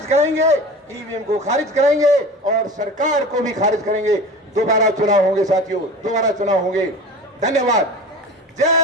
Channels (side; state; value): both; normal; correlation 0.35